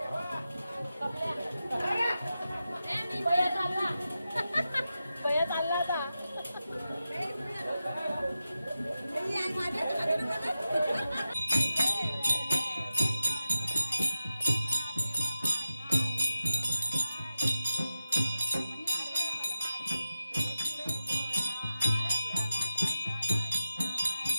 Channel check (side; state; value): both; inverted; correlation -0.92